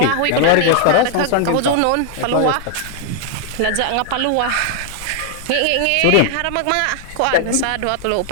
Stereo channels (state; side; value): different; both; correlation 0.00